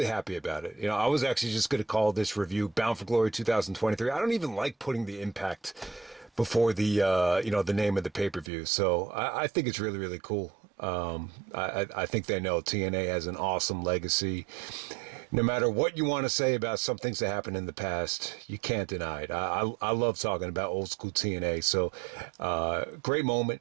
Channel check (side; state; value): left; drops out; at 8.5 s